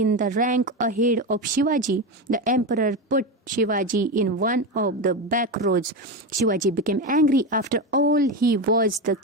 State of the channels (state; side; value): normal; both; correlation 0.16